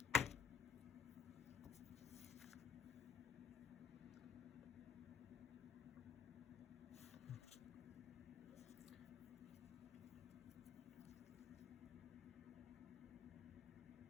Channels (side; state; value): right; quieter; 7.5 dB